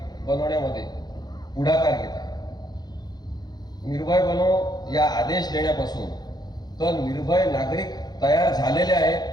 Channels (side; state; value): right; late; 0.20 ms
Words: बनवण्यामध्ये पुढाकार घेत आहे. निर्भय बनो या आदेश देण्यापासून तर निर्भय नागरिक तयार झालेले